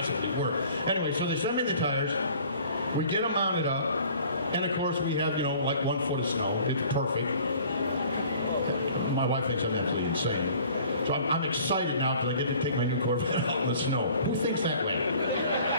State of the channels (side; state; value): both; inverted; correlation -0.51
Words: work. Anyway, so they send me the tires, we get them mounted up, and of course we have, like 1 foot of snow. It's perfect. My wife thinks I'm absolutely insane. So I'm excited now because I get to take my new Corvette out in the snow. Who thinks that way?